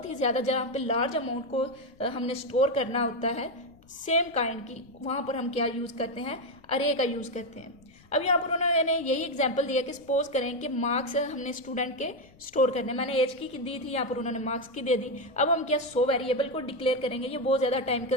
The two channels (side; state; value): left; noise; rumble, 27 dB below the sound